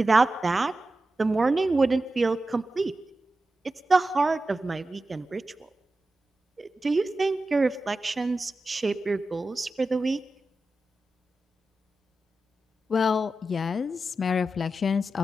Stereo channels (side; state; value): both; normal; correlation 0.92